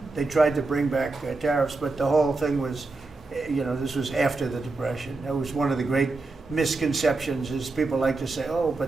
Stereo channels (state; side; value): quieter; left; 3.5 dB